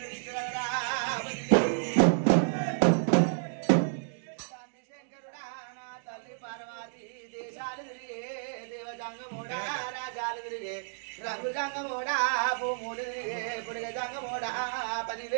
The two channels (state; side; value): silent; left; digital silence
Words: శంకరుడా నా తల్లి పార్వతి దేశాలు తిరిగే దేవజంగమోడా రాజాలు తిరిగే రంగు జంగమోడా భూములు తిరిగే పుడిగ జంగమోడా